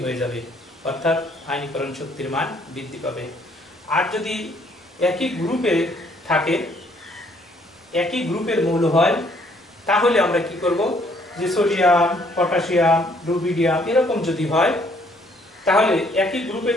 হয়ে যাবে, অর্থাৎ আয়নীকরণ শক্তির মান বৃদ্ধি পাবে। আর যদি একই গ্রুপে থাকে, একই গ্রুপের মৌল হয়, তাহলে আমরা কি করব, যে সোডিয়াম, পটাশিয়াম, রুবিডিয়াম এরকম যদি হয়, তাহলে একই গ্রুপে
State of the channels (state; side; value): normal; both; correlation 0.65